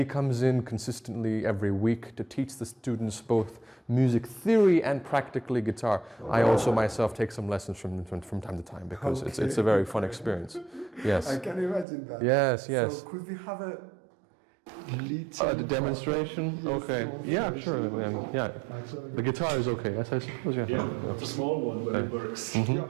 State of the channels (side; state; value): left; drops out; at 11.9 s